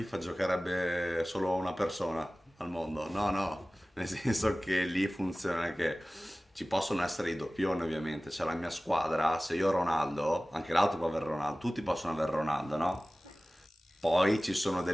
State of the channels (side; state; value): both; normal; correlation 0.98